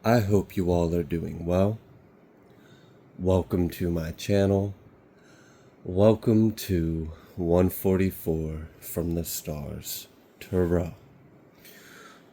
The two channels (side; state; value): both; identical; correlation 1.00